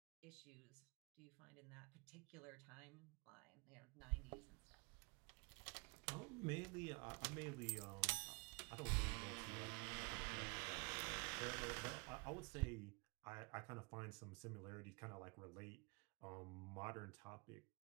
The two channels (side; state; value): left; quieter; 31.3 dB